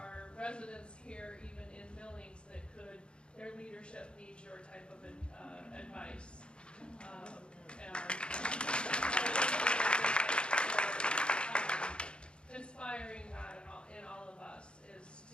residents here, even in Billings, that their leadership needs your type of advice. Inspiring that in all of us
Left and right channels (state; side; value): late; right; 0.054 ms